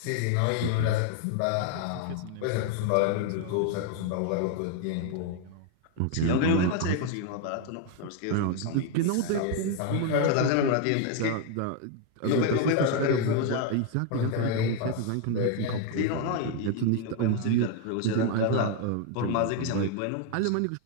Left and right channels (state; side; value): different; both; correlation 0.01